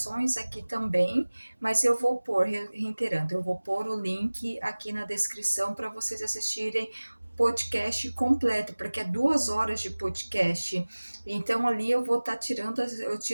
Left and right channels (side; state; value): both; inverted; correlation -1.00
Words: aqui também, mas eu vou pôr, reiterando, eu vou pôr o link aqui na descrição para vocês assistirem podcast completo, porque é 2 horas de podcast. Então ali eu vou estar eu